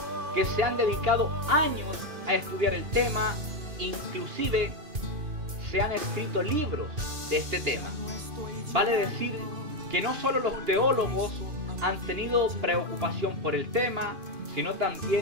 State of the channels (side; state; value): left; late; 2.5 ms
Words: que se han dedicado años a estudiar el tema, inclusive se han escrito libros de este tema. Vale decir que no solo los teólogos han tenido preocupación por el tema, sino